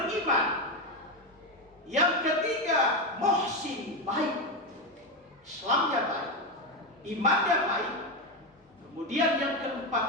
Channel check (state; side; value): normal; both; correlation 0.12